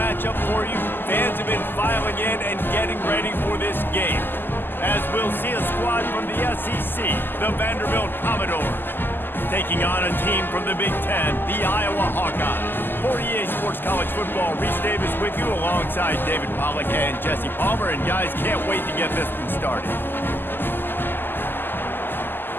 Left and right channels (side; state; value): right; late; 0.094 ms